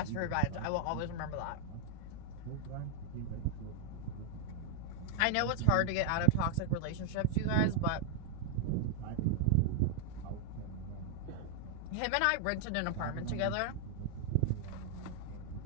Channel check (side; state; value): both; different; correlation 0.00